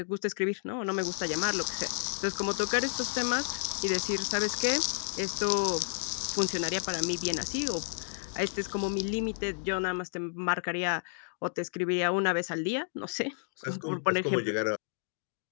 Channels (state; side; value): silent; right; digital silence